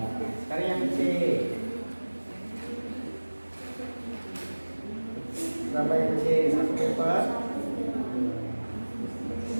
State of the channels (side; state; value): both; inverted; correlation -1.00